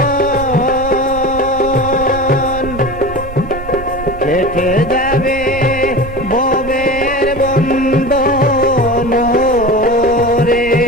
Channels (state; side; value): noise; right; rumble, 12 dB below the sound